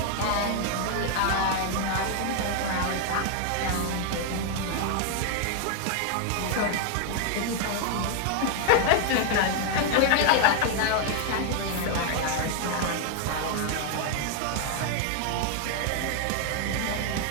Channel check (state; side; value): different; both; correlation 0.00